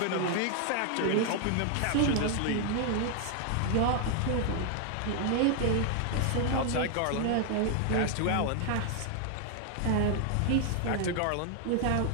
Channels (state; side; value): different; both; correlation 0.00